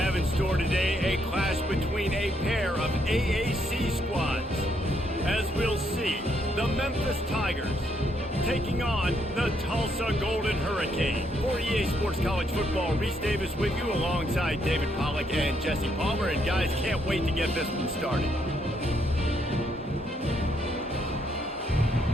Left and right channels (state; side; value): normal; both; correlation 0.74